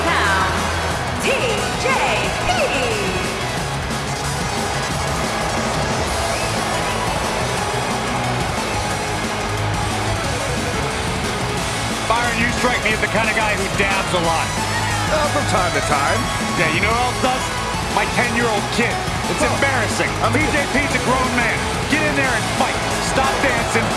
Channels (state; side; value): identical; both; correlation 1.00